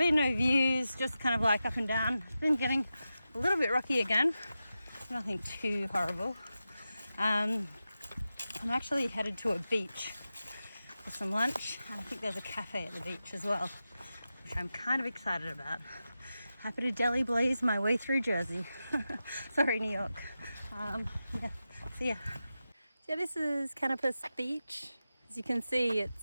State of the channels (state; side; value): inverted; both; correlation -0.92